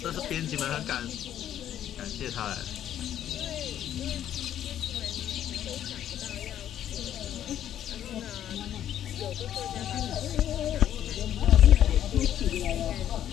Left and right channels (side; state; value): right; quieter; 10.9 dB